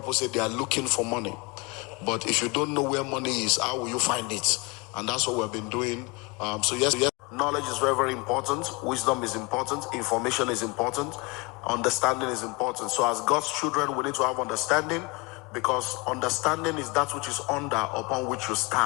say they are looking for money. But if you don't know where money is, how will you find it? And that's what we've been doing. So yes, knowledge is very, very important. Wisdom is important. Information is important. Understanding is important. So as God's children, we need to have understanding, because understanding is that which is under upon which you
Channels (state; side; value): quieter; right; 27.0 dB